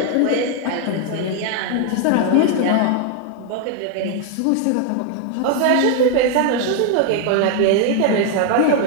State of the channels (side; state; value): both; different; correlation 0.01